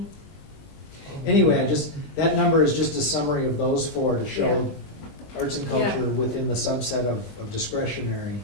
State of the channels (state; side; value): late; right; 20 ms